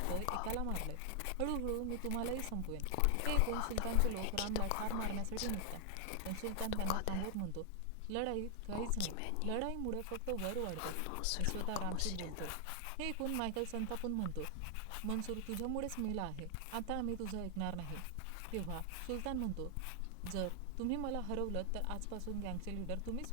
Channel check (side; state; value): both; different; correlation 0.00